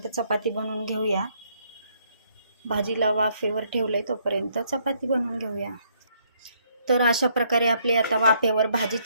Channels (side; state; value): both; inverted; correlation -0.69